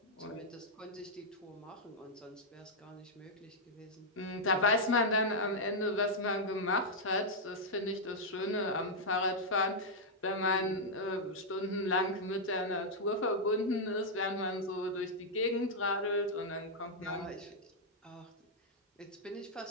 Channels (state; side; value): normal; both; correlation -0.04